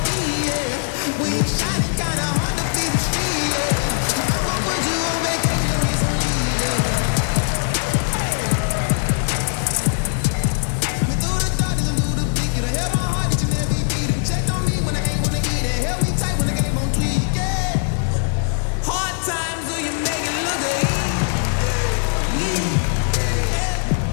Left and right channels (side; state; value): right; silent; 65 dB below the other